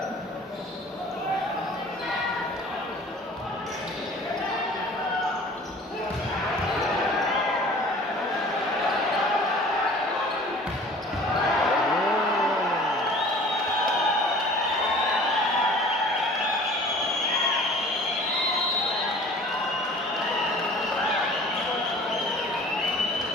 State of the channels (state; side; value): normal; both; correlation 0.47